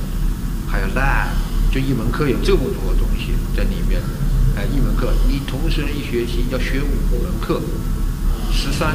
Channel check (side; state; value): both; identical; correlation 1.00